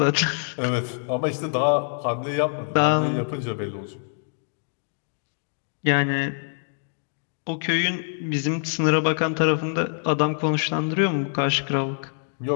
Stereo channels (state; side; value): silent; right; digital silence